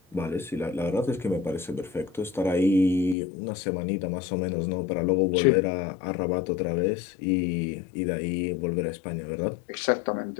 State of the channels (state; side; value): drops out; right; at 3.2 s